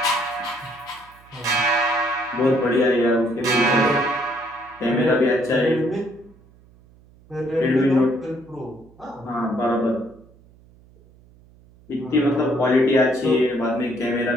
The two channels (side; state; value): right; noise; hum, 27 dB below the sound